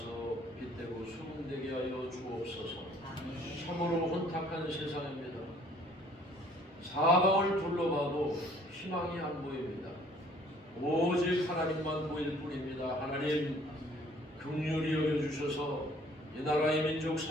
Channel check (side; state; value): both; normal; correlation 0.57